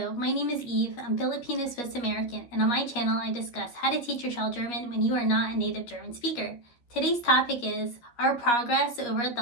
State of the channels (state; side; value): late; right; 13 ms